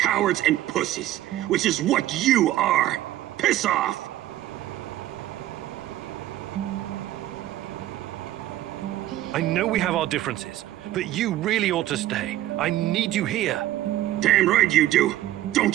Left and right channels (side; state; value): left; quieter; 14.2 dB